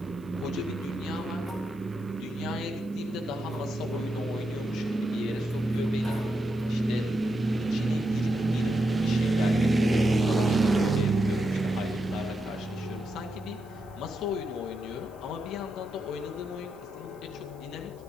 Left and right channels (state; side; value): noise; right; hiss, 30 dB below the sound